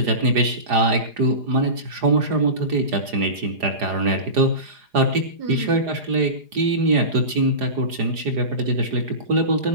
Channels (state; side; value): late; left; 4.9 ms